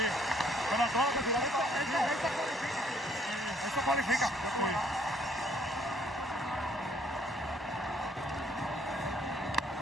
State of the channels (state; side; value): normal; both; correlation 0.64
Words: Pero todo esto cualifica.